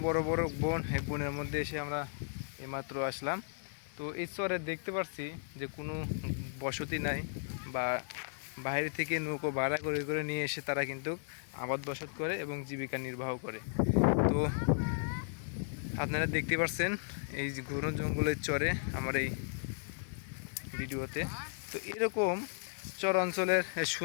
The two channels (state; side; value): silent; right; 54 dB below the other